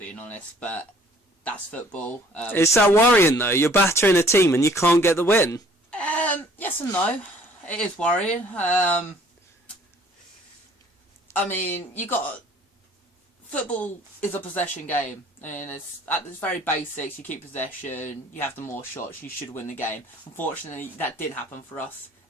honest, but that's football. Is that worrying, though? You're battering a team and you can't get the win? Yes and no. It is worrying. I mean, football is a possession game, and it's at its very basics. You keep possession, you have the more shots, you should win the game. Unfortunately, that did happen for us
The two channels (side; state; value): both; normal; correlation 0.56